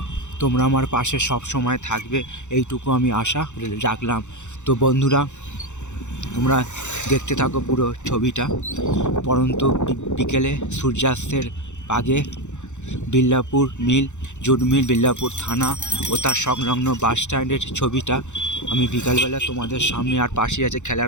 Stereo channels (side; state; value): right; late; 0.84 ms